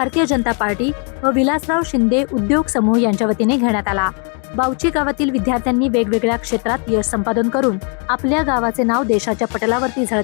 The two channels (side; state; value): right; quieter; 37.9 dB